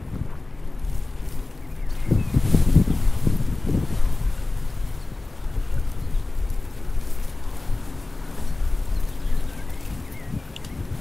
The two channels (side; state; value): right; quieter; 3.1 dB